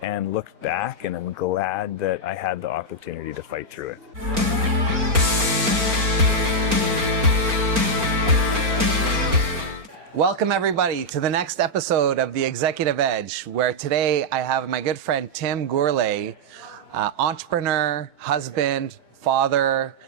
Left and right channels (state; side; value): late; left; 4.4 ms